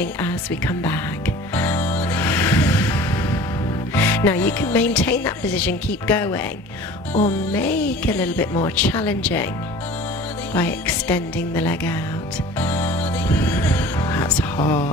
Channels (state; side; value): normal; both; correlation 0.43